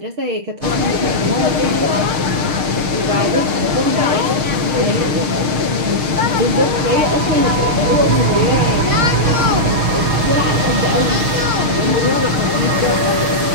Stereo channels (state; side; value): late; left; 6.6 ms